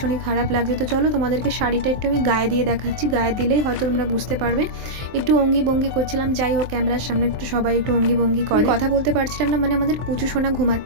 খারাপ লাগছে। তো চলো তোমাদেরকে শাড়িটা একটু আমি গায়ে দিয়ে দেখাচ্ছি, গায়ে দিলেই হয়তো তোমরা বুঝতে পারবে। একটু অঙ্গি ভঙ্গি করছিলাম, যাই হোক ক্যামেরার সামনে একটু সবাই একটু অঙ্গি ভঙ্গি করে, কথা বলতে পারছিলাম না, মানে আমাদের পুচু সোনা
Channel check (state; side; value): late; left; 23 ms